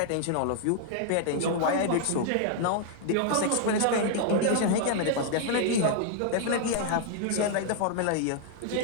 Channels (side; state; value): both; different; correlation 0.00